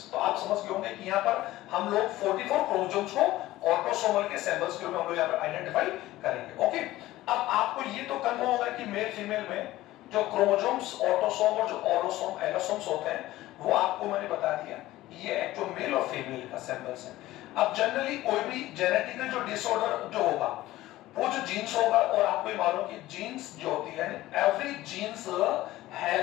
तो आप समझ गए होंगे कि यहाँ पर हम लोग 44 क्रोमोसोम्स को ऑटोसोमल के सिंबल्स के रूप में हम लोग यहाँ पर आइडेंटिफाई करेंगे। ओके, अब आपको ये तो कंफर्म होगा कि मेल फीमेल में जो क्रोमोसोम्स ऑटोसोम और जो ऑलोसोम एलोसोम्स होते हैं वो आपको मैंने बता दिया ये एक्चुअल मेल और फीमेल का सिंबल्स है। अब जनरली कोई भी जेनेटिकल जो डिसऑर्डर जो होगा वो जो जीन्स होगा, और आपको ये मालूम कि जीन्स जो होती है एवरी जीन्स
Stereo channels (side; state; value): right; quieter; 16.4 dB